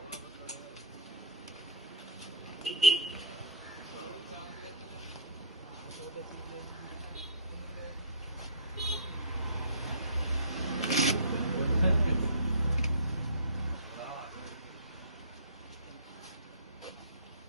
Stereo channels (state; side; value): inverted; both; correlation -0.33